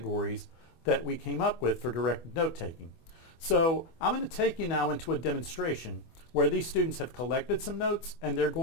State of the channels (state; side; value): late; right; 24 ms